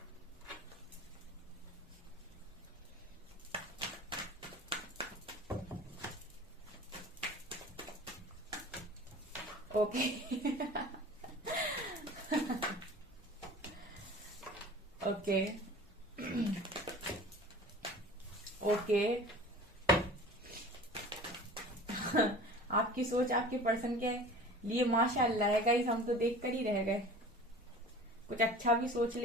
Okay okay okay आपकी सोच आपके पर्सन के लिए माशाअल्लाह है गाइस, हम तो देख कर ही रह गए। कुछ अच्छा भी सोच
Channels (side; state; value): both; normal; correlation 0.41